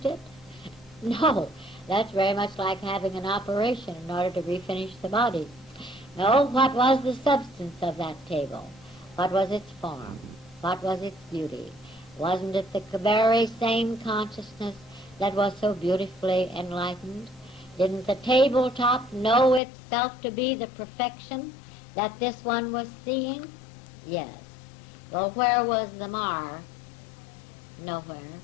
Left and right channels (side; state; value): right; drops out; at 19.6 s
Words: it? No. That's very much like having an operation in order to refinish the body. No, what was the substance of that table? What was its form? What was its beauty? Wasn't it the very same consciousness that was so beautifully enlightened? Didn't the tabletop know itself to be the perfection that this one was seeing? Yes. Well, where was the mar? Nowhere.